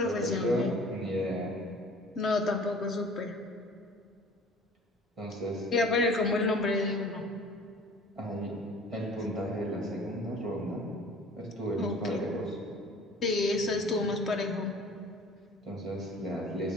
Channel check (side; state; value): both; normal; correlation 0.47